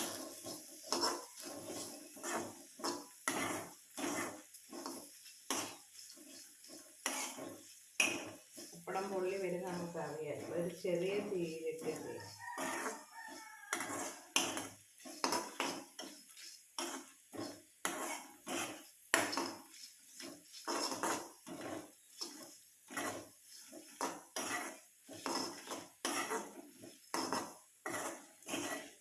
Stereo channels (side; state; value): both; identical; correlation 1.00